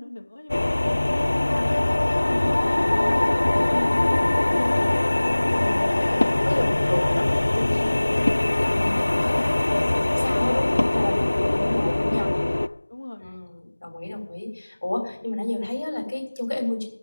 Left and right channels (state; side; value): inverted; both; correlation -1.00